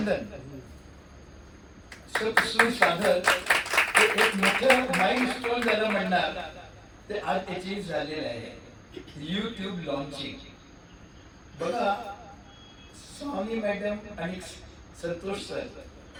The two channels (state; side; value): identical; both; correlation 1.00